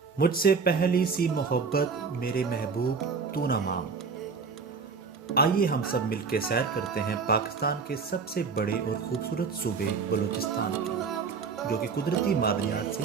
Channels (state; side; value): quieter; left; 5.3 dB